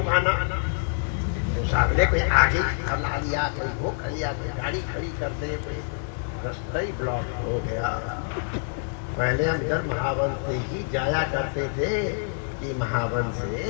तो सामने कोई आगे खला लिया, कोई वो खलिया, कोई गाड़ी खड़ी कर दे, कोई रास्ता ही ब्लॉक हो गया। पहले हम जब महावन से ही जाया करते थे कि महावन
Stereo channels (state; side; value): silent; right; digital silence